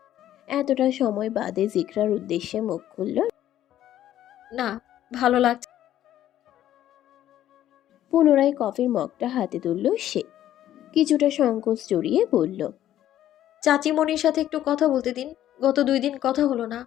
এতটা সময় বাদে জিকরার উদ্দেশ্যে মুখ খুলল। না, ভালো লাগছে। পুনরায় কফির মগটা হাতে তুলল সে। কিছুটা সংকোচ জড়িয়ে বলল, চাচিমণির সাথে একটু কথা বলতে দিন। গত 2 দিন কথা হলো না।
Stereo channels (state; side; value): quieter; right; 12.3 dB